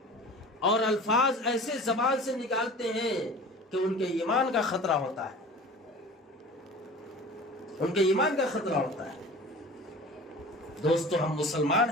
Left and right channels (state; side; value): normal; both; correlation 0.40